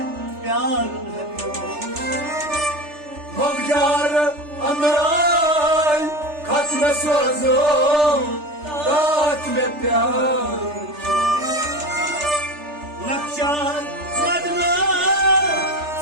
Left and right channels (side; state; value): left; late; 3.3 ms